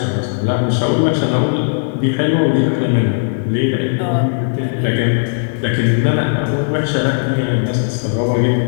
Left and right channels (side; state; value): right; silent; digital silence